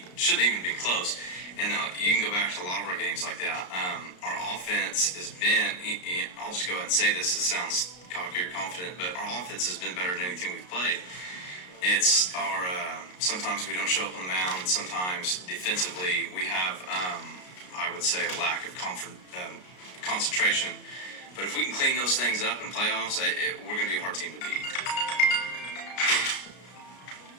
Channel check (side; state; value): right; late; 33 ms